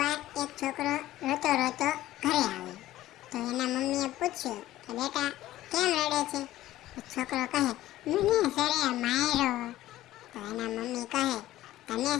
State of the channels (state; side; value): quieter; right; 14.9 dB